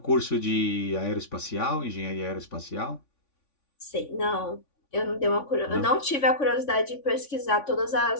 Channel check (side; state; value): right; late; 3.5 ms